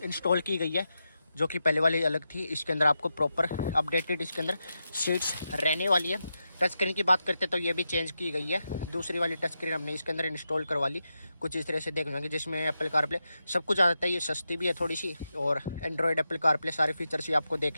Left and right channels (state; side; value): inverted; both; correlation -0.88